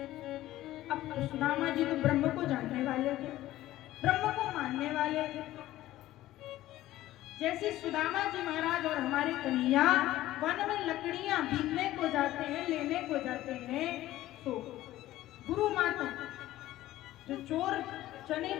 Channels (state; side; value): quieter; right; 15.2 dB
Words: अब सुदामा जी तो ब्रह्म को जानने वाले थे, ब्रह्म को मानने वाले थे। जैसे सुदामा जी महाराज और हमारे कन्हैया वन में लकड़ियां बीनने को जाते हैं, लेने को जाते हैं, तो गुरु माता जो चोर चने